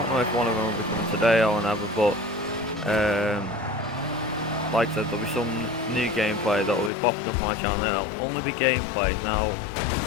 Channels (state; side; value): drops out; right; at 6.9 s